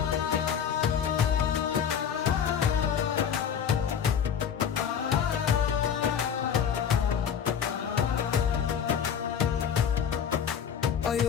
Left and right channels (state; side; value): quieter; right; 8.0 dB